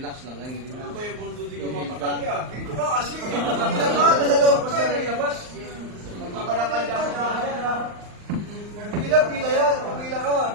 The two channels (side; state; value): left; late; 39 ms